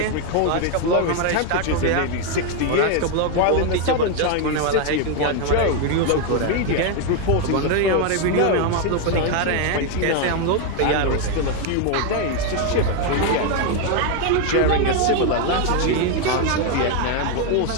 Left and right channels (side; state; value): both; different; correlation 0.01